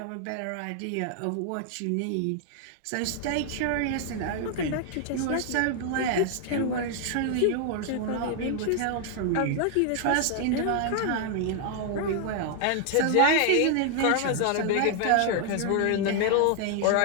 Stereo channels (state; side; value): different; both; correlation 0.00